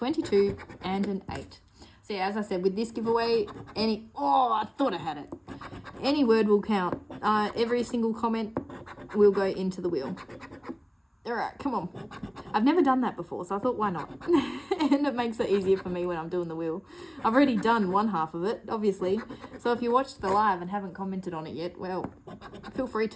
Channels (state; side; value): identical; both; correlation 1.00